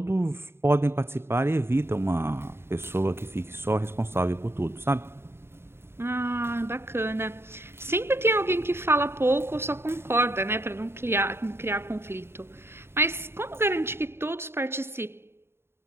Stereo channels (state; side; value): late; left; 0.12 ms